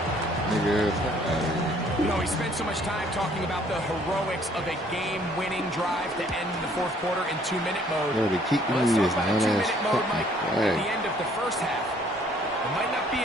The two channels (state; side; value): normal; both; correlation 0.61